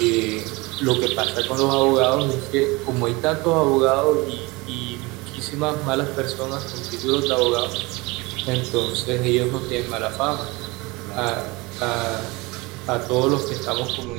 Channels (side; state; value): left; quieter; 24.2 dB